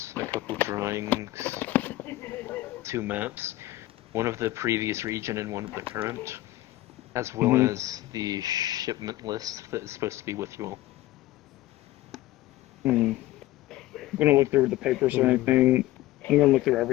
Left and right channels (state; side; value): quieter; right; 16.6 dB